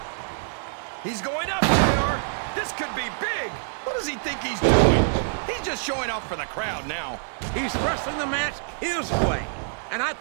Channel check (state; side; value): silent; left; digital silence